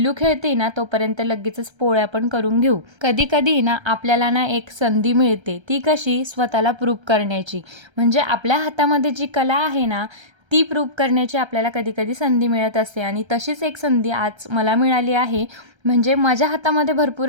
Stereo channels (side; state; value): left; late; 1.3 ms